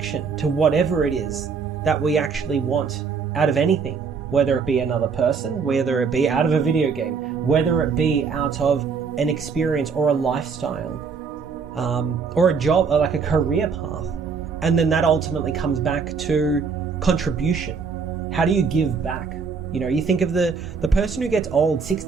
to whatever it is that we actually want out of anything, whether it be another person, whether it be out of a video game, whether it be out of an experience or a lifestyle, or a job, or like a career path. And then that ultimately comes back to contribution. How do you give back? You know, you think of the person who gets old,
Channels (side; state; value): left; quieter; 5.6 dB